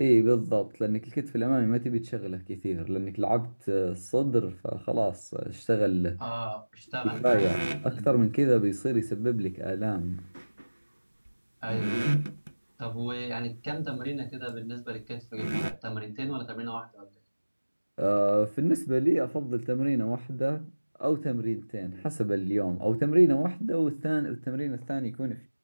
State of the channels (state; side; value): inverted; both; correlation -1.00